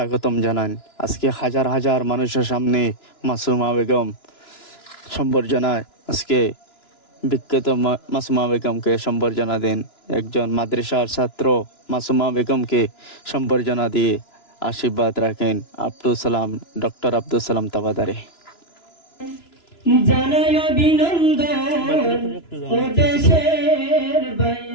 জানান। আজকে হাজার হাজার মানুষের সামনে মাসুমা বেগম সম্বর্ধনায় আজকে বিখ্যাত মাসুমা বেগমকে সম্বর্ধনা দেন। একজন মাদ্রাসার ছাত্র মাসুমা বেগমকে সম্বর্ধনা দিয়ে আশীর্বাদ রাখেন ডক্টর আব্দুল সালাম তাবাদারে। জানাই অভিনন্দন ও দেশের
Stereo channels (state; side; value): late; right; 2.9 ms